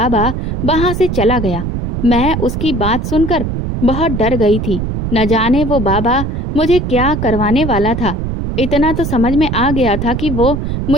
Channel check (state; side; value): noise; right; rumble, 3 dB below the sound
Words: वहां से चला गया। मैं उसकी बात सुनकर बहुत डर गई थी। न जाने वो बाबा मुझे क्या करवाने वाला था। इतना तो समझ में आ गया था कि वो